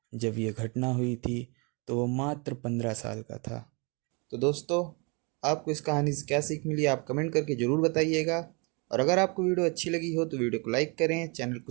जब ये घटना हुई थी तो वो मात्र 15 साल का था। तो दोस्तों, आपको इस कहानी से क्या सीख मिली आप कमेंट करके ज़रूर बताइएगा। और अगर आपको वीडियो अच्छी लगी हो तो वीडियो को लाइक करें, चैनल को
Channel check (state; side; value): quieter; left; 31.8 dB